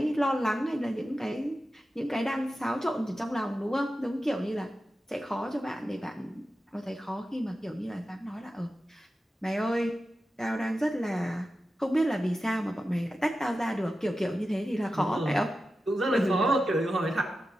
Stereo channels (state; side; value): normal; both; correlation 0.92